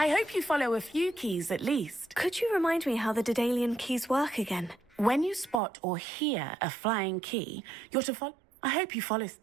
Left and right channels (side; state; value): left; drops out; at 5.6 s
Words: hope you follow a few keys at least. Could you remind me how the Daedalian keys work again? When you spot or hear a flying key, you're to follow. I hope you follow.